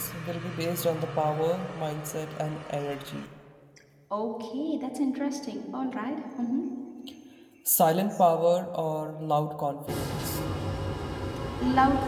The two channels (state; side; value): identical; both; correlation 1.00